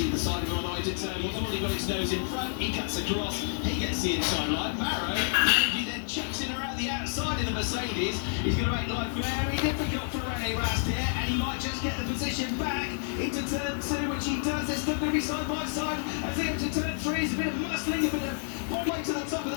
side of him on the way to turn. He's already got his nose in front. He cuts across. He gets the inside line. Maro, he then chucks it around the outside of the Mercedes. He's going to make life very difficult for Rene Rast here, and he might just get the position back into turn 2, which he does. They're still going to be side by side. As they enter turn 3, it's a bit of muscling, a bit of one way to the top of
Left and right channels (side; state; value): right; silent; digital silence